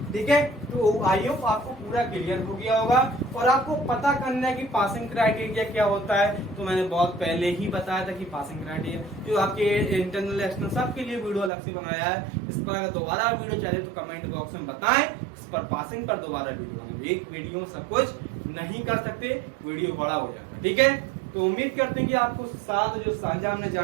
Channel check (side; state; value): left; drops out; at 11.5 s